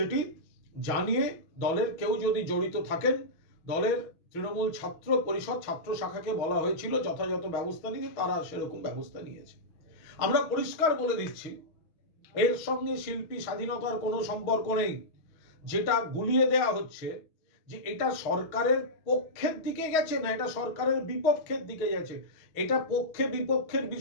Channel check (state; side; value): late; right; 6.2 ms